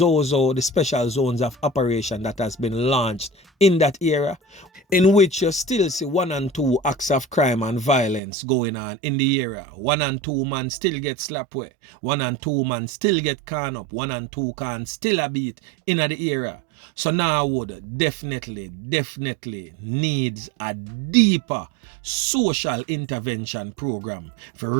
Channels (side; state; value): left; drops out; at 8.2 s